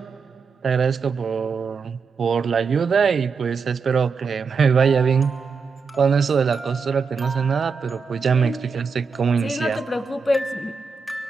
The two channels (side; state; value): left; quieter; 5.2 dB